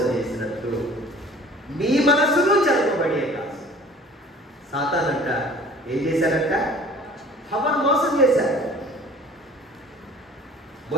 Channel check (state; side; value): normal; both; correlation 0.48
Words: చేసినట్లు మీ మనసును జరపబడే కాదు. సాతానంట ఏం చేశారంట? హవ్వను మోసం చేశారు.